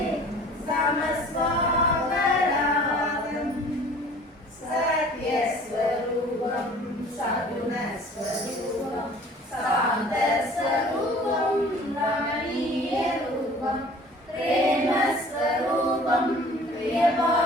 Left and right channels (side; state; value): both; normal; correlation 0.48